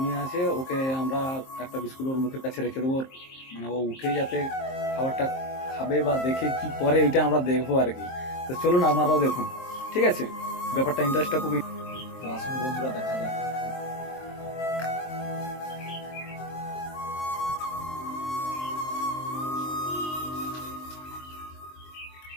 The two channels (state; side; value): late; right; 23 ms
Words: আছে, ওকে আমরা একটা বিস্কুট ওর মুখের কাছে রেখে দেবো, মানে ও উঠেই যাতে খাবারটা খাবে বা দেখে কি করে এটা আমরা দেখবো আর কি। তো চলুন আপনারাও দেখুন, ঠিক আছে? ব্যাপারটা ইন্টারেস্টটা খুবই। তো আসুন বন্ধুরা, দেখা যাক।